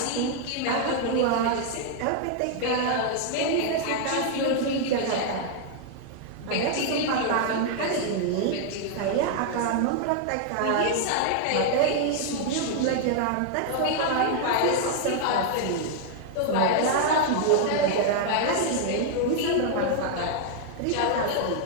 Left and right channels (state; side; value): different; both; correlation 0.00